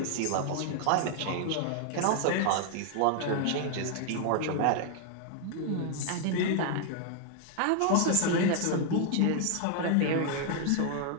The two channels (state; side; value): different; both; correlation 0.00